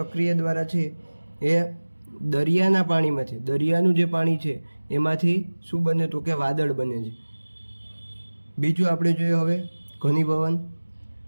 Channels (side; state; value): both; inverted; correlation -1.00